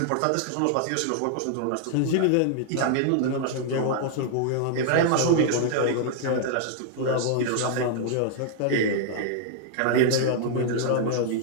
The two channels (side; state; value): both; different; correlation -0.01